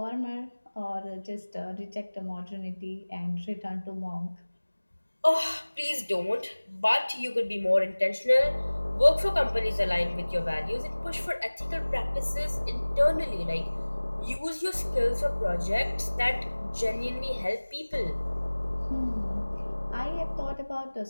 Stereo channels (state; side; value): inverted; both; correlation -1.00